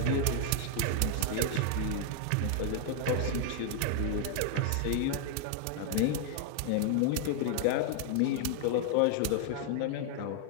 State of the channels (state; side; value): different; both; correlation 0.00